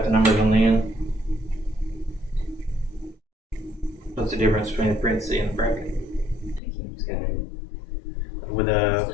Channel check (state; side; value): drops out; right; at 6.6 s